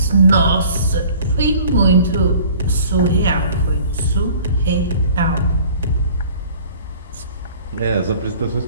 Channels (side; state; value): both; inverted; correlation -0.49